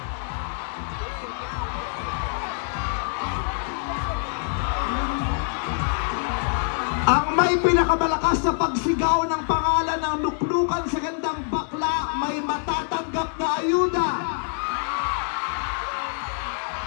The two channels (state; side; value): silent; right; 62 dB below the other